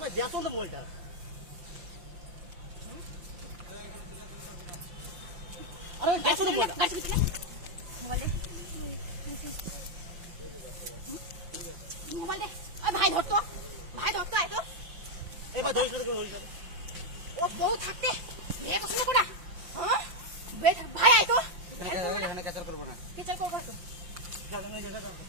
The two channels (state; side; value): late; left; 5.7 ms